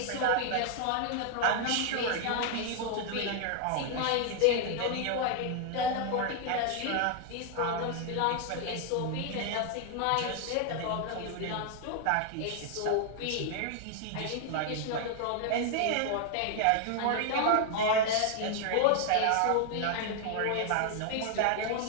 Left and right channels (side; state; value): both; different; correlation 0.00